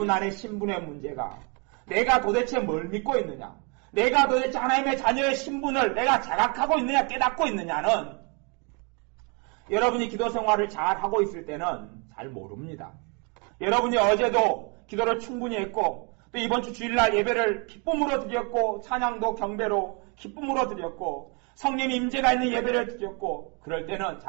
안에 신분의 문제가 내가 도대체 뭘 믿고 있느냐, 내가 도대체 하나님의 자녀의 신분을 내가 자각하고 있느냐 깨닫고 있느냐는 여러분이 기도 생활을 잘 하고 있을 때는 잘 모릅니다. 여러분이 어제도 기도를 충분히 했고 또 이번 주 주일날 예배를 기쁨으로 드렸고 찬양도 경배로 기쁨으로 드렸고 성령 임재가 있는 예배를 드렸고 그럴 때는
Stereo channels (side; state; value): left; quieter; 34.0 dB